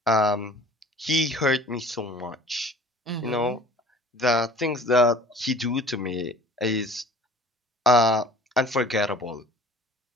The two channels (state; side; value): normal; both; correlation 0.47